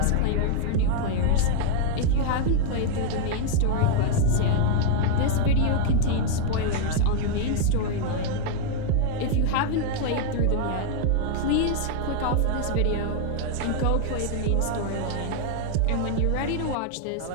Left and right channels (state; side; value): different; both; correlation 0.00